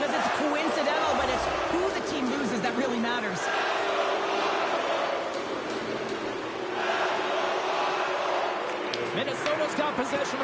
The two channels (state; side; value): identical; both; correlation 1.00